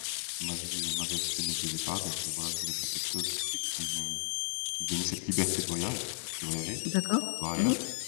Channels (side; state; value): right; silent; 56 dB below the other